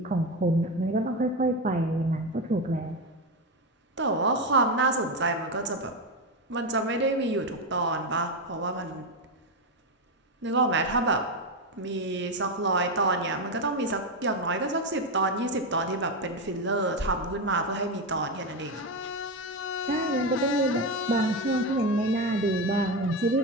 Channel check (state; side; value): normal; both; correlation 0.12